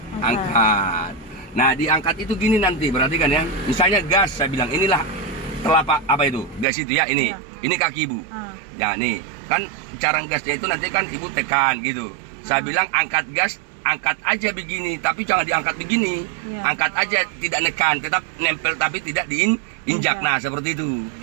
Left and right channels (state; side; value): drops out; left; at 6.7 s